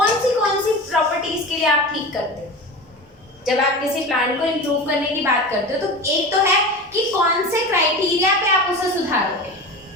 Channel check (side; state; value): both; normal; correlation 0.30